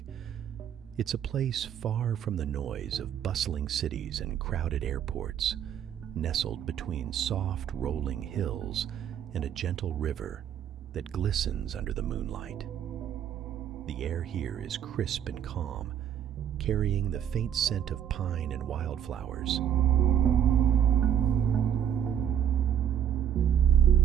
It's a place far from the noise of bustling cities and crowded airports, nestled between soft, rolling hills and a gentle river that glistens under the moonlight. The air here is crisp and calm, carrying the faint scent of pine and wildflowers.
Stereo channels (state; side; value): quieter; left; 9.6 dB